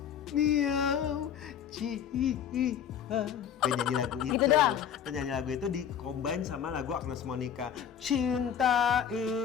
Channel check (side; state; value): right; quieter; 8.6 dB